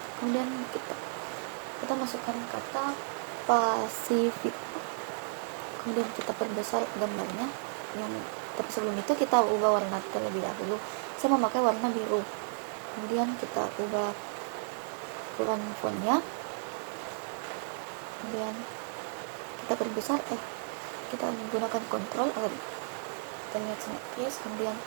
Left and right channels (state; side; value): silent; left; digital silence